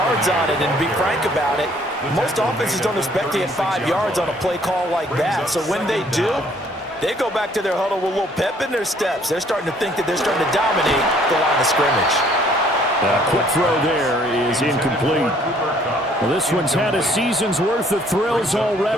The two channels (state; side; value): normal; both; correlation 0.61